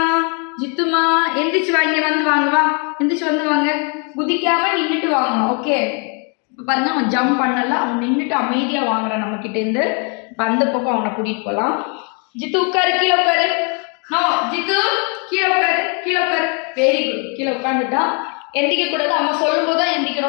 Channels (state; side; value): quieter; right; 36.9 dB